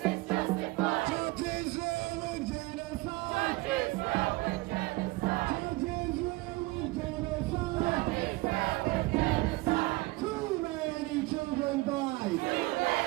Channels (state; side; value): quieter; left; 21.7 dB